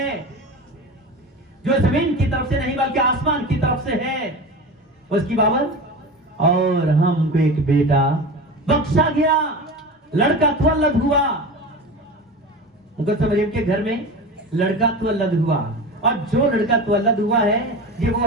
جو زمین کی طرف سے نہیں بلکہ آسمان کی طرف سے ہے، اس کی بابت اور ہم کو ایک بیٹا بخشا گیا، لڑکا تولد ہوا. مقدسہ مریم کے گھر میں لڑکا تولد ہوا، اور جو لڑکا تولد ہوا ہے یہ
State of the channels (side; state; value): both; normal; correlation 0.29